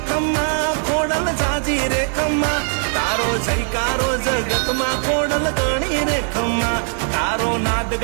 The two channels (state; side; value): silent; left; 57 dB below the other